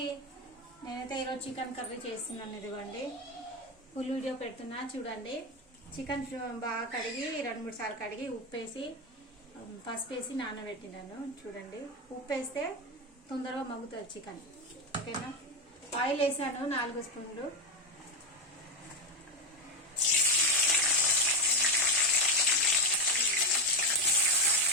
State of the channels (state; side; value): normal; both; correlation 0.10